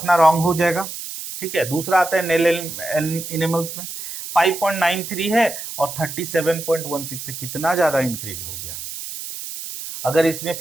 रॉन्ग हो जाएगा। ठीक है, दूसरा आता है नेल एनिमल्स में 5.93 है और 37.16 से कितना ज्यादा इंक्रीज हो गया। अगर इसमें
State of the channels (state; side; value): noise; right; hiss, 9 dB below the sound